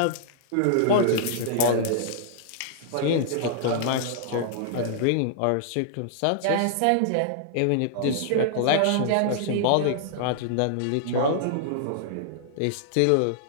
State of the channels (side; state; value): both; different; correlation -0.02